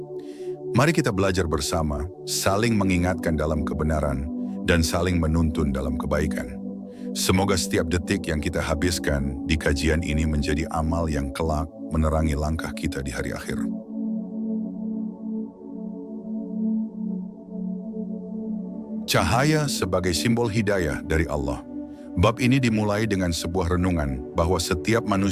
Mari kita belajar bersama, saling mengingatkan dalam kebenaran, dan saling menuntun dalam kebaikan. Semoga setiap detik yang kita habiskan di kajian ini menjadi amal yang kelak menerangi langkah kita di hari akhir. Cahaya sebagai simbol hidayah dari Allah. Bab ini dimulai dengan sebuah renungan bahwa setiap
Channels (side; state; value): both; identical; correlation 1.00